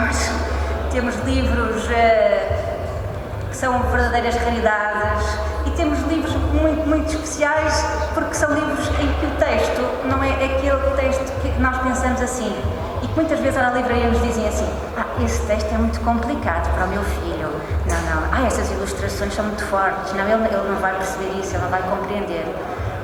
Temos livros que são verdadeiras raridades e temos livros muito, muito especiais porque são livros em que o texto não é aquele texto que nós pensamos assim e que muitas vezes na livraria nos dizem assim: esse texto é muito complicado para o meu filho, não, essas ilustrações são muito fortes, não, ele não vai perceber isso, ele não vai compreender.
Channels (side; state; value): both; identical; correlation 1.00